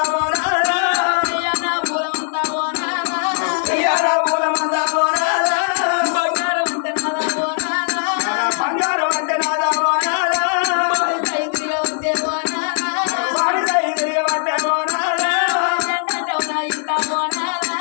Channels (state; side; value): silent; right; digital silence